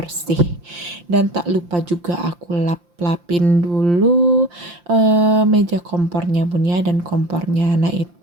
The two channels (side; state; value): left; late; 5.7 ms